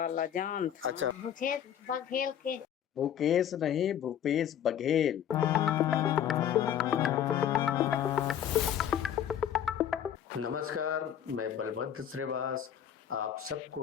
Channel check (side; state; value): right; quieter; 9.6 dB